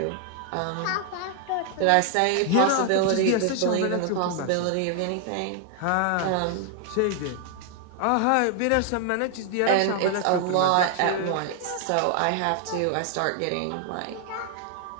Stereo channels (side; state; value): both; different; correlation 0.00